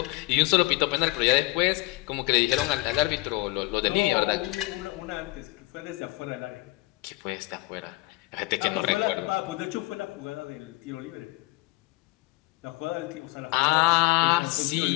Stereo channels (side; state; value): right; quieter; 21.5 dB